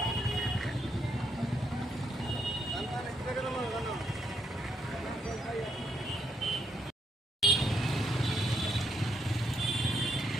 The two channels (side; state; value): both; normal; correlation 0.77